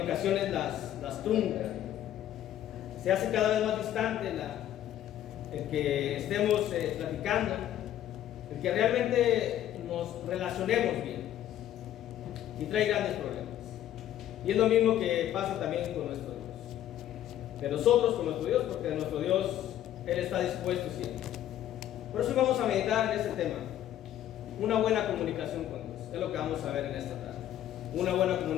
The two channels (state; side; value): quieter; right; 11.9 dB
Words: las truncan. Se hace cada vez más distante el que estemos platicando, el que realmente nos relacionemos bien, y trae grandes problemas. Y es lo mismo que pasa también con nuestro Dios, de nosotros con nuestro Dios, porque de nuestro Dios Él está dispuesto siempre. Por eso vamos a meditar en este tema, una buena comunicación con Dios. Es lo que vamos a ver en esta tarde. Una